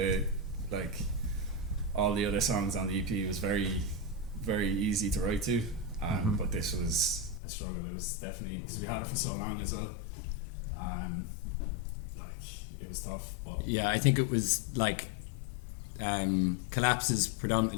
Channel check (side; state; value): right; drops out; at 7.4 s